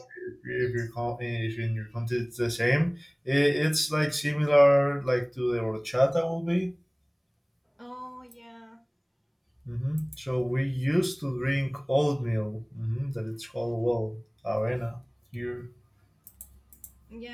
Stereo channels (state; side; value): identical; both; correlation 1.00